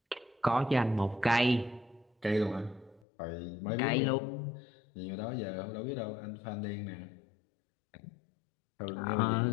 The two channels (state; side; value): drops out; right; at 3.1 s